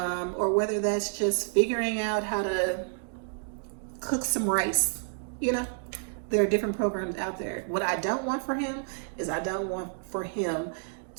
whether that's just figuring out how to cook some rice. There are different programs out there. What I don't want for him is I don't want for him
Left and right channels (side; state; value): left; silent; digital silence